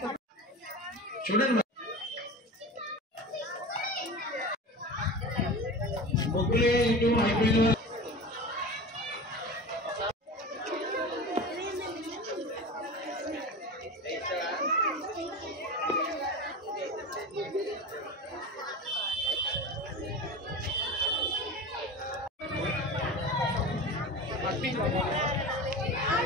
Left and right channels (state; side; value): normal; both; correlation 0.31